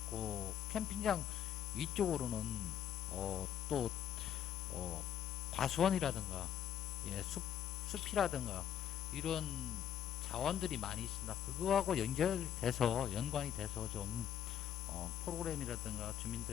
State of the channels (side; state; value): right; quieter; 9.8 dB